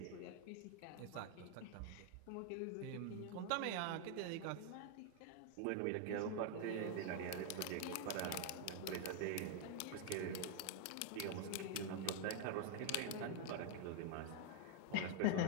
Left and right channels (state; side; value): different; both; correlation 0.00